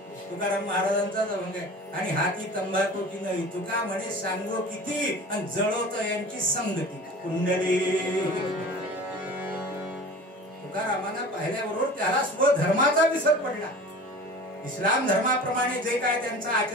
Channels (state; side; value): normal; both; correlation 0.39